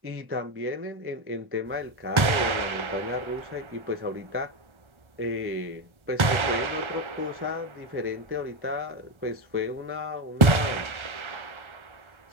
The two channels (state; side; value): late; left; 1.3 ms